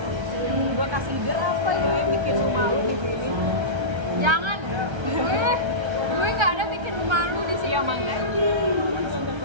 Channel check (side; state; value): left; late; 1.3 ms